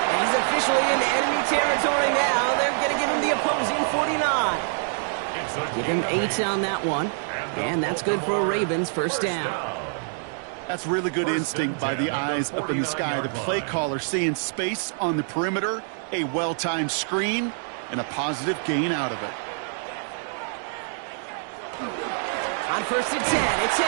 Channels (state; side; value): silent; left; 61 dB below the other